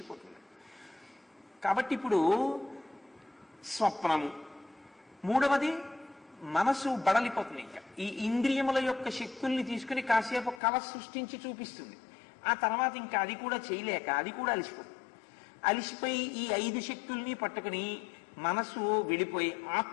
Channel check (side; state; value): right; drops out; at 10.6 s